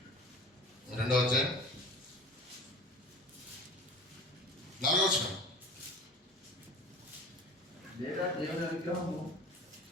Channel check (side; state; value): both; normal; correlation 0.40